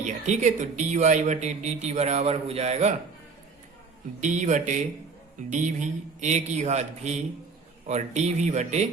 ठीक है, तो dy/dt बराबर हो जाएगा d/dv a की घात v और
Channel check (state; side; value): quieter; left; 4.6 dB